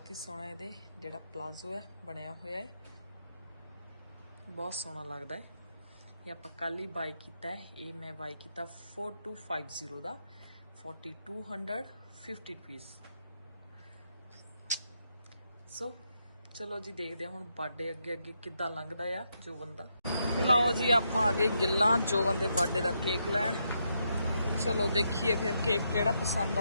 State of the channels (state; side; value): inverted; both; correlation -0.80